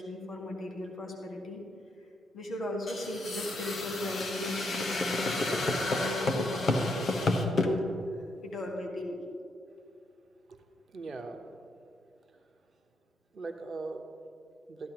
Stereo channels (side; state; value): both; normal; correlation 0.77